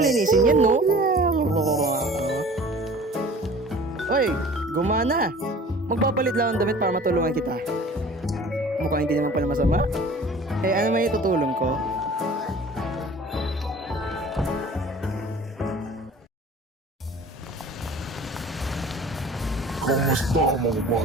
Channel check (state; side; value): normal; both; correlation 0.46